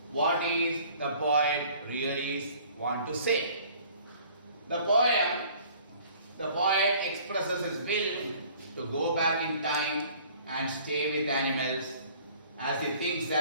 What is the poet really want to say? The poet expresses his will to go back in time and stay with animals as he thinks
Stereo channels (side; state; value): both; inverted; correlation -0.52